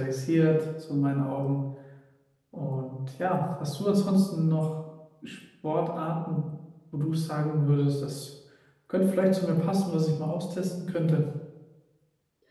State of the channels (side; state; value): both; identical; correlation 1.00